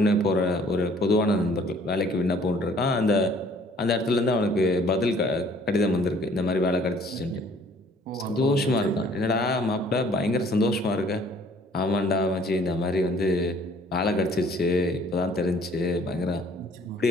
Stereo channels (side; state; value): both; normal; correlation 0.57